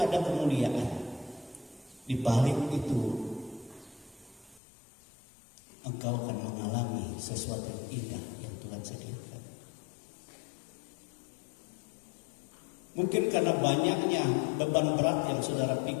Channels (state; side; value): drops out; right; at 4.6 s